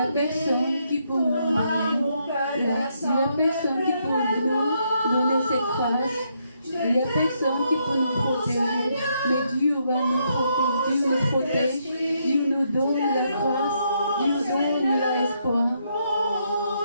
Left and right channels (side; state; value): both; inverted; correlation -0.76